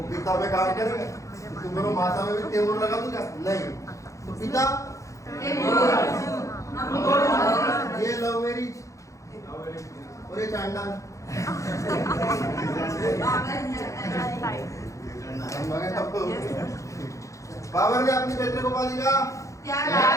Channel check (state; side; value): late; right; 0.15 ms